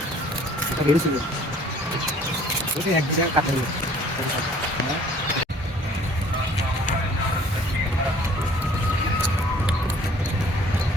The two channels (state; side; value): normal; both; correlation 0.55